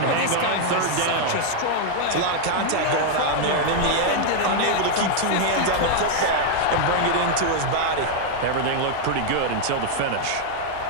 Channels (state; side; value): different; both; correlation 0.00